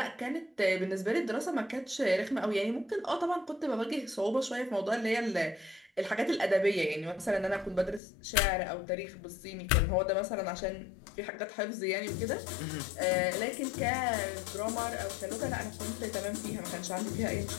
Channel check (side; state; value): right; drops out; at 8.0 s